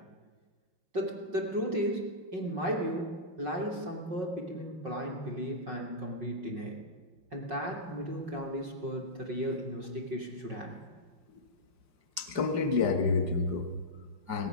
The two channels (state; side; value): late; left; 4.9 ms